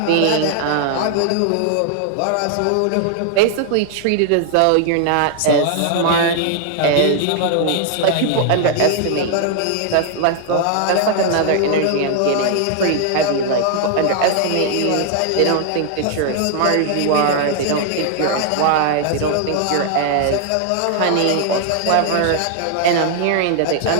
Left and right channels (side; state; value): both; different; correlation 0.00